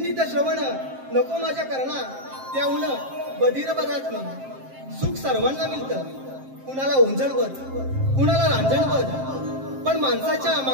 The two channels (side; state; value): left; late; 7.6 ms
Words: श्रवण नको माझ्या कर्णा, त्याहून बधीर बराच मी. सुख सर्वांना मिळतं, कुणाला ओंजळवर कुणाला रांजणवर, पण माणसाच्या